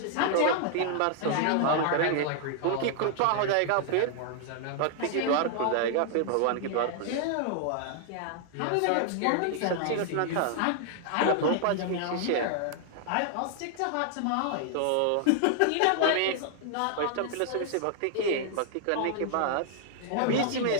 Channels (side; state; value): both; different; correlation 0.00